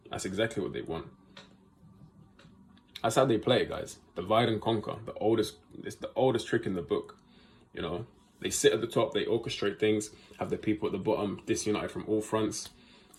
That's exactly what they want. That's how they play it, guys. Divide and conquer. It's the oldest trick in the book. You know, they sit at the top, they orchestrate things, have the people at the bottom disunited from all fronts,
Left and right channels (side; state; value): both; identical; correlation 1.00